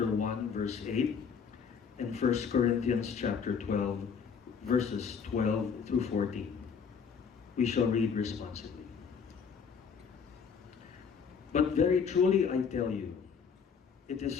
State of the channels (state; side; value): quieter; right; 6.4 dB